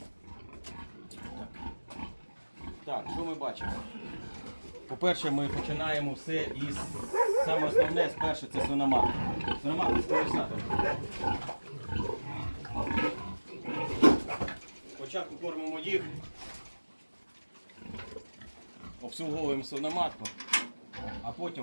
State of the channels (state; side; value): inverted; both; correlation -1.00